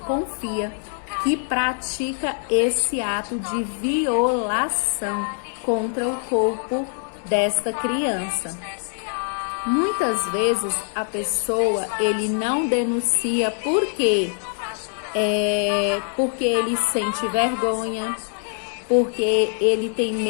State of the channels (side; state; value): right; silent; 60 dB below the other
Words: que pratica esse ato de violação contra o corpo desta criança. Muitas vezes a pessoa, ele não denuncia por quê? Porque ele sente vergonha, porque ele tem